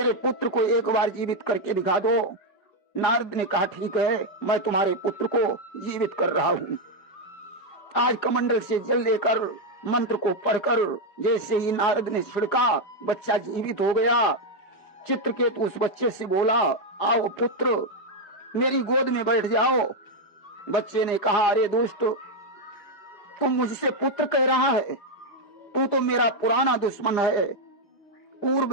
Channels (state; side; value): late; right; 4.9 ms